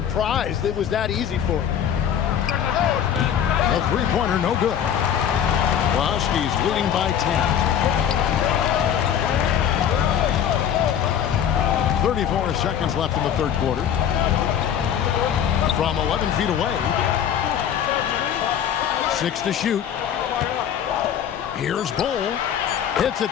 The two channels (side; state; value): right; quieter; 9.1 dB